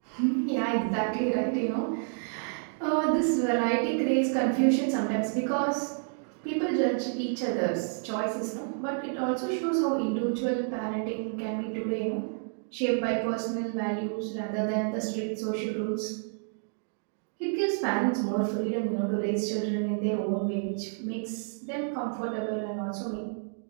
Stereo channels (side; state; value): left; silent; 58 dB below the other